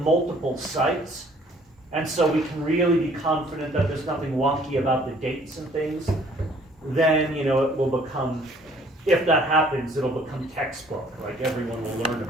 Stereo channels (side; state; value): both; normal; correlation 0.58